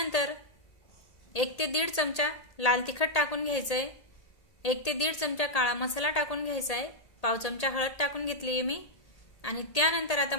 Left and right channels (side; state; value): right; late; 1.8 ms